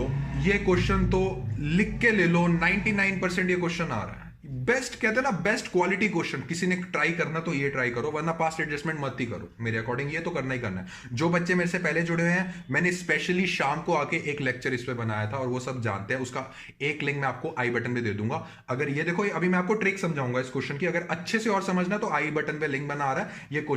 ये क्वेश्चन तो लिख के ले लो, 99% ये क्वेश्चन आ रहा है। बेस्ट कहते हैं ना, बेस्ट क्वालिटी क्वेश्चन, किसी ने ट्राई करना तो ये ट्राई करो, वरना पास्ट एडजस्टमेंट मत ही करो। मेरे अकॉर्डिंग ये तो करना ही करना है। जो बच्चे मेरे से पहले जुड़े हुए हैं, मैंने स्पेशली शाम को आके एक लेक्चर इस पे बनाया था और वो सब जानते हैं, उसका एक लिंक मैं आपको आई बटन पे दे दूंगा। अगर ये देखो, अभी मैं आपको ट्रिक समझाऊंगा इस क्वेश्चन की, अगर अच्छे से और समझना तो आई बटन पे लिंक बना आ रहा है, ये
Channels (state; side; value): identical; both; correlation 1.00